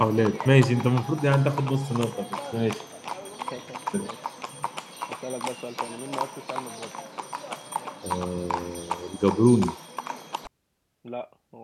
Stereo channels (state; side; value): identical; both; correlation 1.00